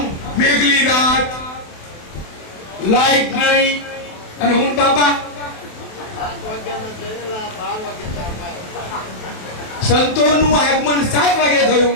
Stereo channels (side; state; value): right; late; 28 ms